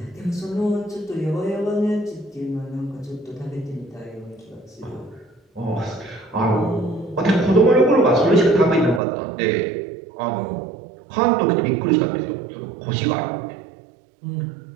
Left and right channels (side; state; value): left; drops out; at 9.0 s